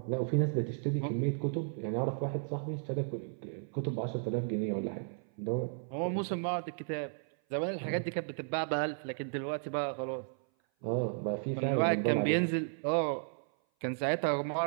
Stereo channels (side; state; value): left; silent; 55 dB below the other